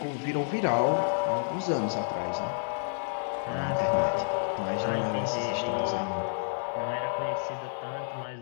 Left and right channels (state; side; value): silent; right; digital silence